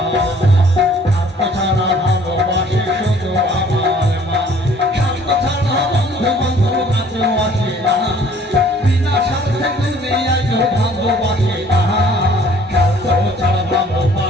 স্বার্থ ছাড়া ভালোবাসে শুধু আমার মা, স্বার্থ ছাড়া বন্ধু বান্ধব কাছেও আসে না, বিনা স্বার্থে দুনিয়ায় কেউ ভালোবাসে না, স্বার্থ ছাড়া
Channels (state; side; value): normal; both; correlation 0.56